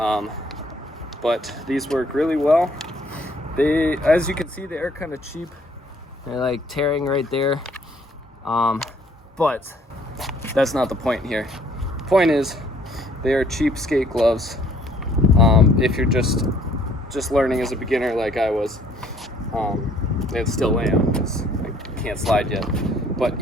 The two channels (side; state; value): both; normal; correlation 0.61